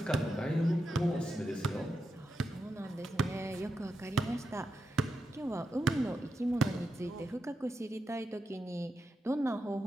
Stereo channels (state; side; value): normal; both; correlation 0.87